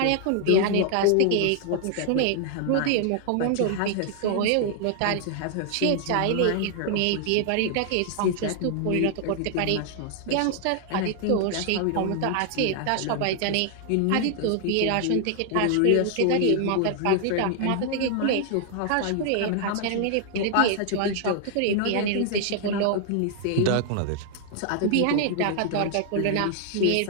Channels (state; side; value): different; both; correlation 0.00